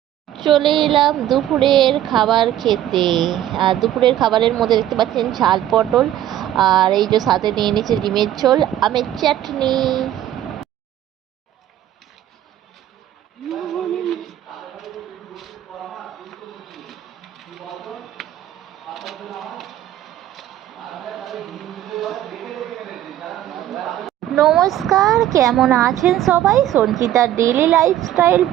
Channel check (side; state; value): left; quieter; 12.3 dB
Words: চলে এলাম দুপুরের খাবার খেতে। আর দুপুরের খাবারের মধ্যে দেখতে পাচ্ছেন ঝাল পটল, আর এই যে সাথে নিয়ে নিয়েছে ডিমের ঝোল, আমের চাটনি। নমস্কার, কেমন আছেন সবাই? সঞ্চিতার ডেইলি লাইফস্টাইল